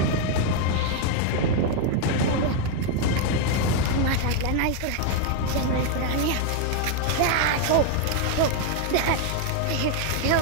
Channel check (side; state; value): both; different; correlation 0.00